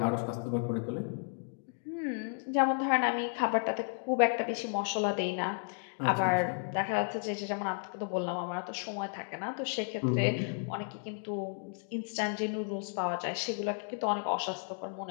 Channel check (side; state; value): right; silent; 56 dB below the other